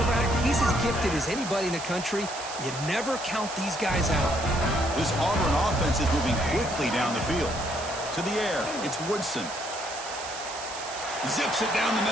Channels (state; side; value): noise; right; hiss, 10 dB below the sound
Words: he's as gifted as anybody in the country. You never count these guys out. This Auburn offense is moving quickly down the field. To the air, it's Woodson. Zips it down the